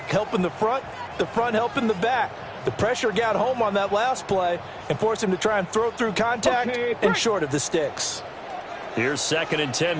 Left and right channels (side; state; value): both; identical; correlation 1.00